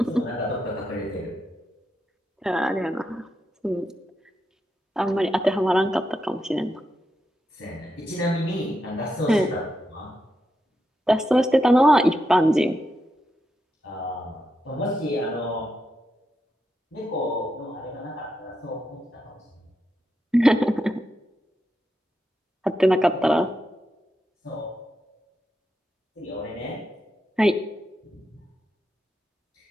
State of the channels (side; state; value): both; normal; correlation 0.85